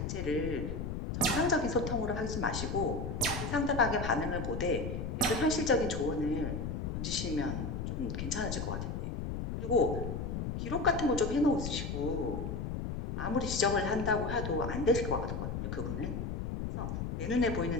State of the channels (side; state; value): left; noise; rumble, 3 dB below the sound